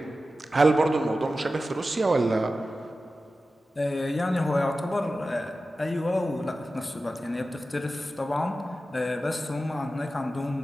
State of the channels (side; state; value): both; normal; correlation 0.94